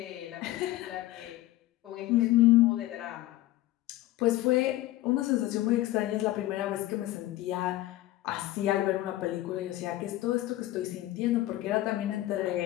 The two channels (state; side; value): quieter; right; 16.3 dB